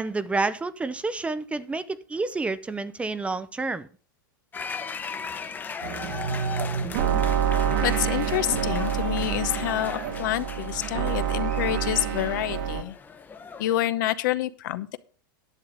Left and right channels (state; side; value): normal; both; correlation 0.12